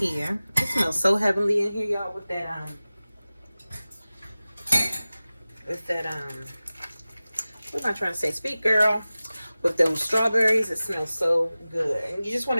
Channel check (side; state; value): both; inverted; correlation -0.97